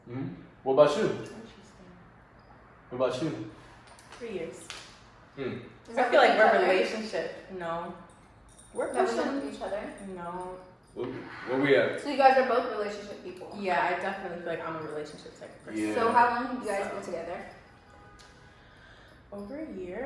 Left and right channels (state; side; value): identical; both; correlation 1.00